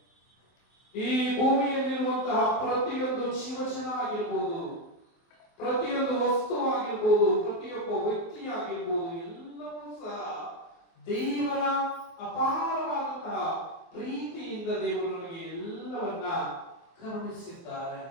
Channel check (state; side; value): late; right; 23 ms